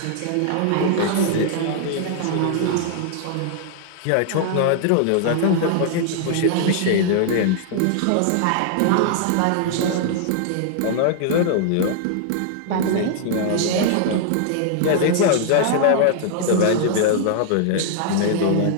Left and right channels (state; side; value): different; both; correlation 0.00